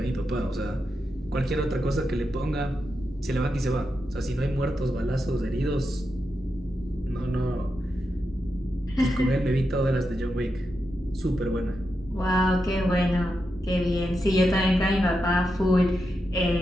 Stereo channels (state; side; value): normal; both; correlation 0.87